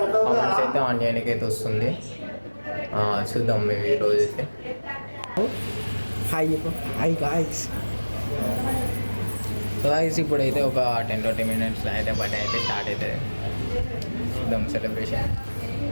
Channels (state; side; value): inverted; both; correlation -1.00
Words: కామెంట్స్ అయితే ఆన్ చేయడానికి అయితే వస్తుంది. చూద్దాం మేము ఈరోజు అయితే. Hi guys. సో గాయ్స్, ఇప్పుడైతే ఒక 10-20 minutes అయితే బర్త్డే అయితే స్టార్ట్ అవుతుంది. చూద్దాం సెలబ్రేషన్.